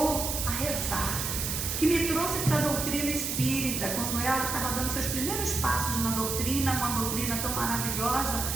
a rezar, que me trouxe para a doutrina espírita, quando ela estava dando seus primeiros passos na doutrina, uma doutrina tão maravilhosa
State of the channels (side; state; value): right; noise; hiss, 2 dB below the sound